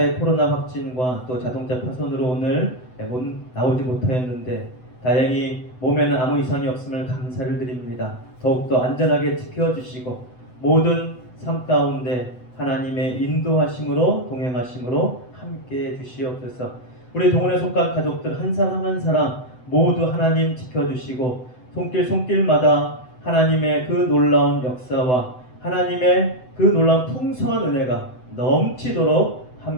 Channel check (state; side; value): late; right; 7.9 ms